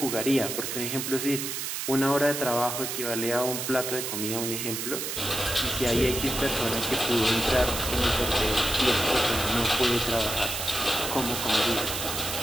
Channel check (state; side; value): noise; right; hiss, 4 dB below the sound